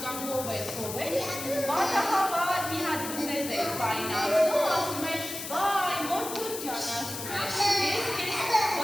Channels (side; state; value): left; noise; hiss, 7 dB below the sound